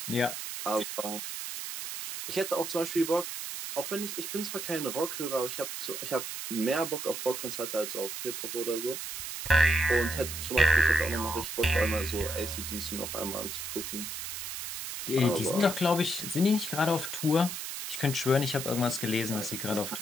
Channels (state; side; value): noise; right; hiss, 6 dB below the sound